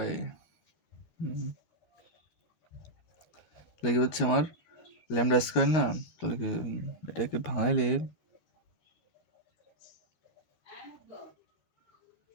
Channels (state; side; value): late; right; 13 ms